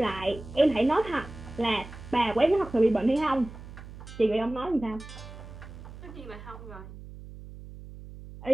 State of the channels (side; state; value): right; noise; hum, 14 dB below the sound